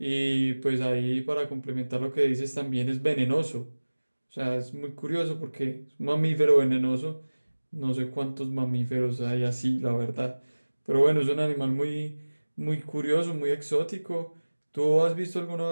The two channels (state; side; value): inverted; both; correlation -1.00